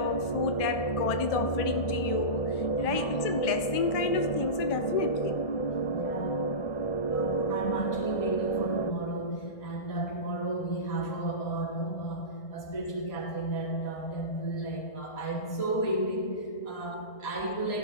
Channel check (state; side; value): late; right; 1.6 ms